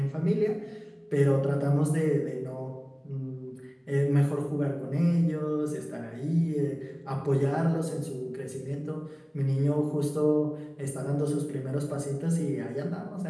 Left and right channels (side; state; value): both; identical; correlation 1.00